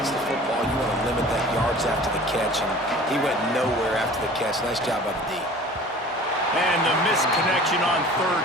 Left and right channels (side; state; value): both; normal; correlation 0.44